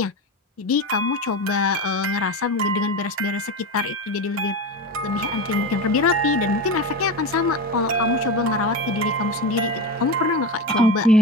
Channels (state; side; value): normal; both; correlation 0.22